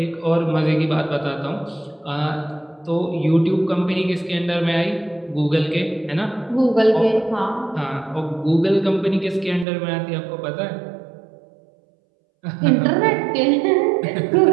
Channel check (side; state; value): left; drops out; at 9.7 s